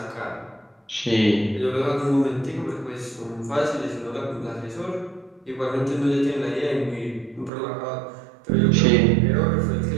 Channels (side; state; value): left; drops out; at 7.5 s